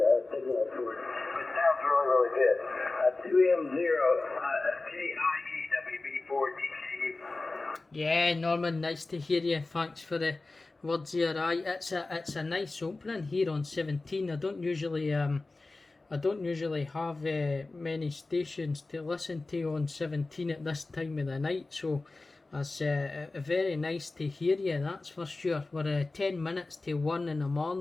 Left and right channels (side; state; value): right; quieter; 3.3 dB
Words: a signal for it. It sounds really, really good. 2M0 KIE WB4DKU. Yeah, Norman, nice to hear you. Thanks for the words here. It's a nice opening here on 17. I don't usually have many stations to listen to on 17 at this time of the night, so it's very nice to hear you, that's for sure. We're 10 minutes to 1 in the